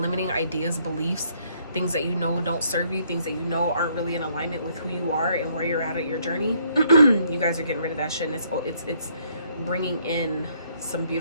ideas, beliefs, things that you know don't serve you, things that you know aren't really in alignment with who you are and where you're at your journey, you guys are getting rid of that shit, and it's bringing in some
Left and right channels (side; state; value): both; inverted; correlation -0.68